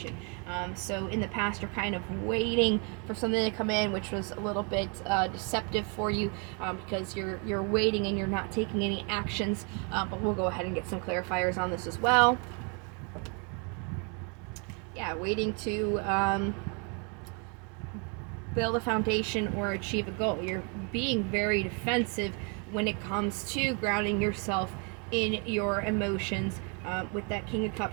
So in the past, you're kind of waiting for something to come in, which was a little bit deceptive for you, because you're waiting and you're not taking any actions. But we'll go ahead and get some clarifiers on this as well. Yeah, waiting to build a foundation or achieve a goal. You're being very defensive when it comes to grounding yourself in your emotions, with that King of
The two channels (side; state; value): left; quieter; 35.8 dB